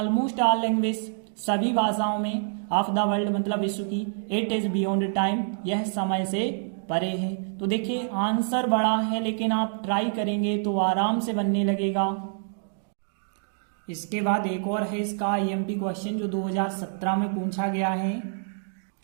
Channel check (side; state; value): left; silent; digital silence